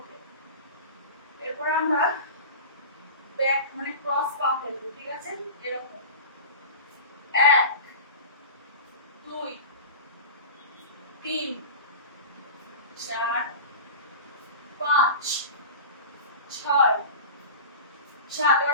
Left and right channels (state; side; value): inverted; both; correlation -0.32